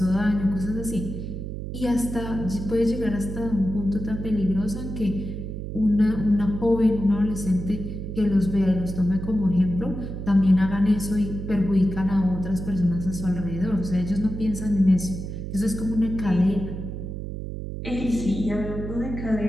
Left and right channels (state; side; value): noise; right; hum, 6 dB below the sound